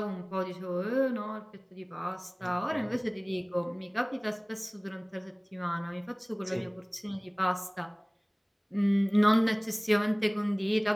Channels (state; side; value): identical; both; correlation 1.00